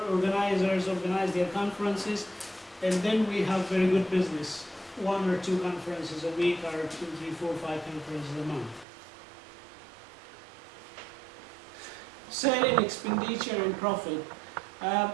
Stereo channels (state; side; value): drops out; left; at 8.8 s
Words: organizers organize their conferences, and then we have very good business. 1 or 2 conferences a week, or 2, 3, 4, 5 conferences a month. Selling, expenditure, and profit.